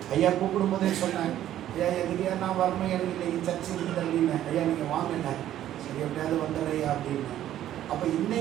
ஐயா கூப்பிடும் போதே சொன்னேன், ஐயா எதுக்கையா நான் வரணும், எனக்கு இன்னைக்கு சர்ச்சை இருக்குது அப்படின்னு. ஐயா நீங்கள் வாங்கின சரி எப்படியாவது வந்துடுறையா அப்படின்னு. அப்போ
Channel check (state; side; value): quieter; left; 12.1 dB